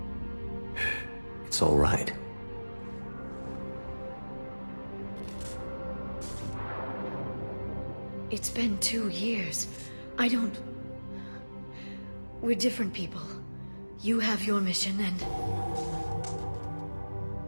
It's all right. It's been 2 years. I don't... We're different people. You have your mission and...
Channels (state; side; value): inverted; both; correlation -1.00